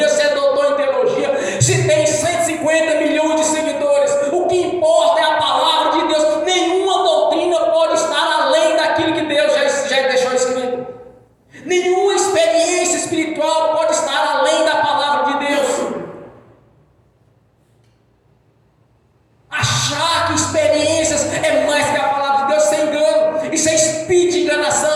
se é doutor em teologia, se tem 150 milhões de seguidores. O que importa é a palavra de Deus. Nenhuma doutrina pode estar além daquilo que Deus já deixou escrito. Nenhuma experiência espiritual pode estar além da palavra de Deus. Achar que experiências é mais que a palavra de Deus, sem engano, isso é espírito de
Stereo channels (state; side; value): identical; both; correlation 1.00